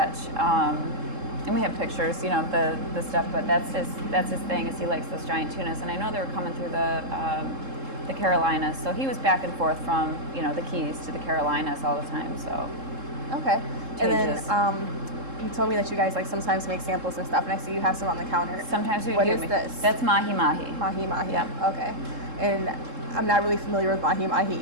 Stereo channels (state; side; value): late; left; 3.7 ms